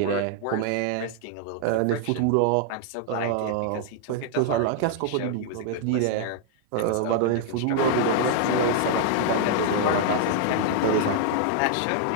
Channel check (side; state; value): both; different; correlation -0.01